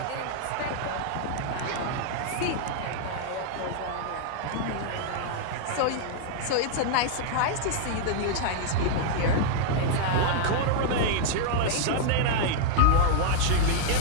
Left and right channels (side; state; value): both; different; correlation -0.01